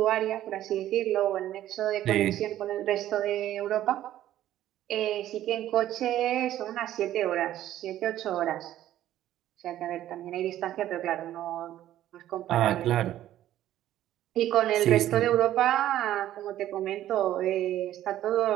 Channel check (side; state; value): left; quieter; 12.9 dB